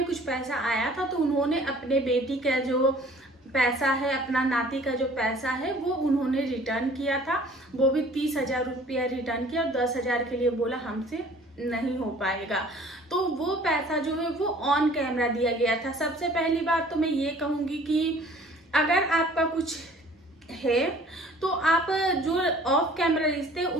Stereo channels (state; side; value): normal; both; correlation 0.52